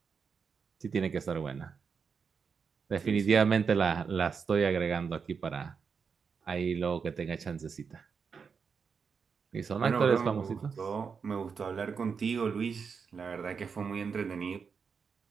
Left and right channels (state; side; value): quieter; left; 5.9 dB